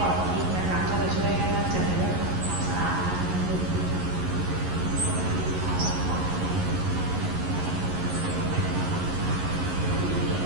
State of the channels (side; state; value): left; late; 11 ms